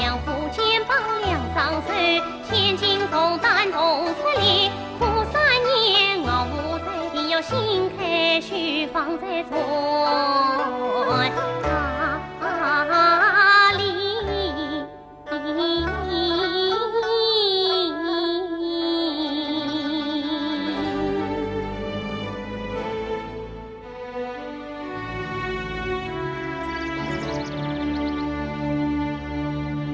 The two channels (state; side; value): identical; both; correlation 1.00